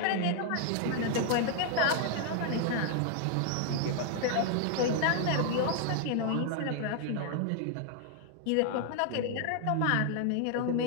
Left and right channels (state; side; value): different; both; correlation 0.00